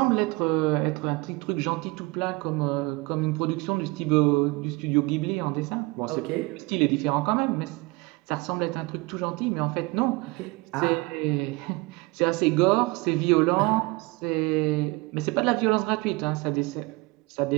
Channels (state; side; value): quieter; left; 24.8 dB